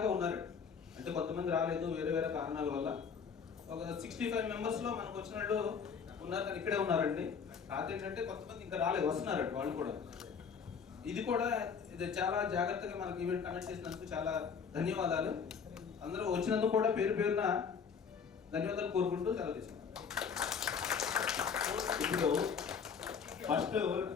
ఉన్నారు. అంటే కొంతమంది రాలేదు వేరే కారణాల వల్ల. ఒక 65 members లో మనకు వచ్చిన వాళ్ళు ఉన్నారు, కానీ ఇక్కడే ఉన్నారండి. కాదేంటంటే కొంతమంది ఇంకా రాలేదు, వస్తున్నారండి వాళ్ళు కూడా. ఇది చాలా జాగ్రత్తగా మనకి ఈవెంట్ కండక్ట్ చేసినందుకు చాలా ధన్యవాదాలు. అందరూ వచ్చినందుకు కూడా పేరున ధన్యవాదాలు కోరుకుంటూ సెలవు తీసుకున్నాను. ఇప్పుడు ఫస్ట్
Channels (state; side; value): quieter; right; 6.4 dB